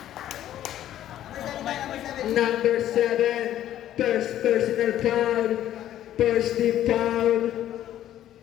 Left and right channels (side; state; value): right; quieter; 12.1 dB